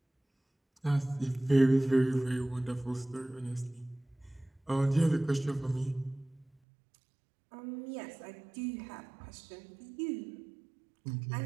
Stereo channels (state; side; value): drops out; left; at 6.5 s